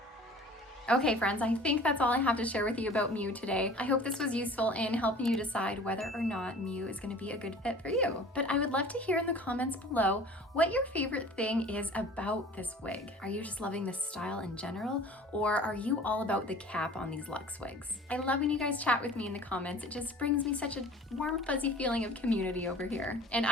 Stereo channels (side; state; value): both; normal; correlation 0.45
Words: Okay friends, I think that's all I have to share with you about Mew today. I hope this was useful in helping you decide whether or not Mew is going to be a good fit for you. But I would love to hear in the comments below what your favorite thing is about this wig. Are you just loving this style in general, or are you all about the cap on these luxe wigs? I love when you guys chat with me in the comments. It just brings me such a warm, fuzzy feeling of community over here. And